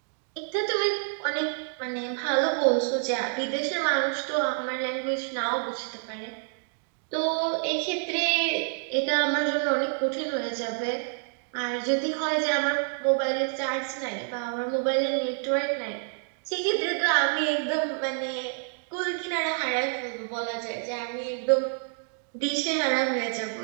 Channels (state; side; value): silent; left; 58 dB below the other